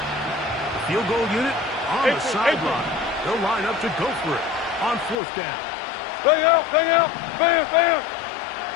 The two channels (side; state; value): right; drops out; at 5.2 s